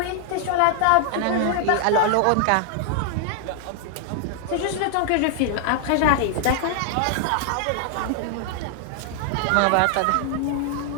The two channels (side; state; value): both; different; correlation 0.00